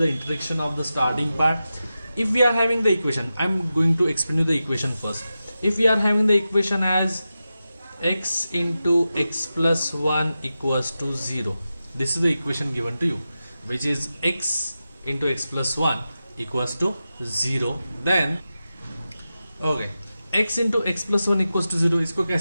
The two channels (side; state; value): both; inverted; correlation -0.92